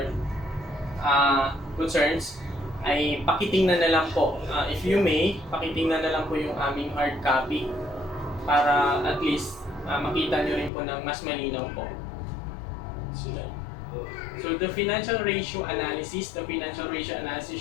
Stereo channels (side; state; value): right; drops out; at 10.7 s